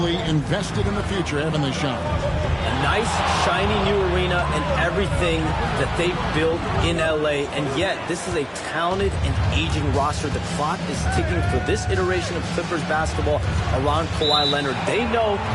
invested in the future, haven't they, Sean? A nice, shiny new arena and everything that they built in LA. And yet, this is a talented and aging roster. The clock is ticking for this iteration of Clippers basketball around Kawhi Leonard. They know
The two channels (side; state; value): both; identical; correlation 1.00